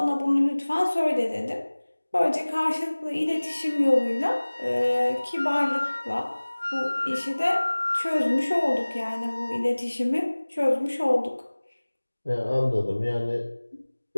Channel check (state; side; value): inverted; both; correlation -1.00